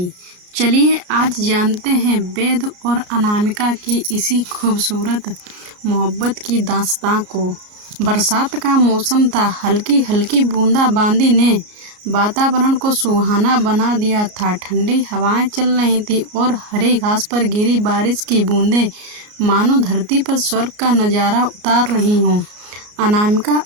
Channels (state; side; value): late; left; 33 ms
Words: चलिए आज जानते हैं वेद और अनामिका की इसी खूबसूरत मोहब्बत की दास्तां को। बरसात का मौसम था, हल्की हल्की बूंदाबांदी ने वातावरण को सुहाना बना दिया था। ठंडी हवाएं चल रही थी और हरी घास पर गिरी बारिश की बूंदें मानो धरती पर स्वर्ग का नज़ारा उतार रही हों। अनामिका